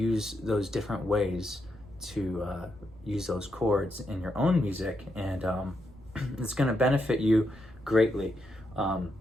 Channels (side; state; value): right; noise; rumble, 28 dB below the sound